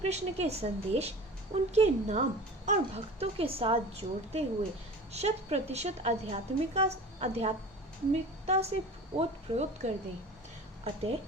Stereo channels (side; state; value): both; normal; correlation 0.37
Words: के संदेश, उनके नाम और भक्तों के साथ जोड़ते हुए 100% आध्यात्मिकता से ओतप्रोत कर दें। अतः